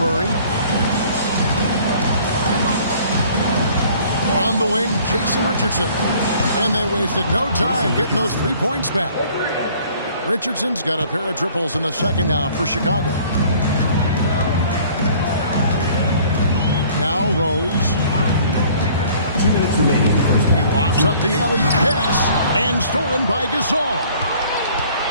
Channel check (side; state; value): both; inverted; correlation -0.54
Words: On the wing, Jason Richardson. And they wasted no time getting those 3 points back. Richardson's got a pair of triples in the second now for Chicago. Now Rose. 2 minutes remaining. He lofts up the alley-oop pass and stolen by Gasol.